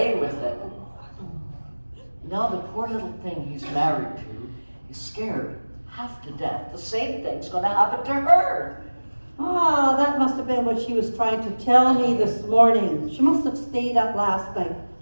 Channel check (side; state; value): both; inverted; correlation -1.00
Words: with it. Now the poor little thing he's married to is scared half to death. The same thing's going to happen to her. Ah, that must have been what she was trying to tell me this morning. She must have stayed up last night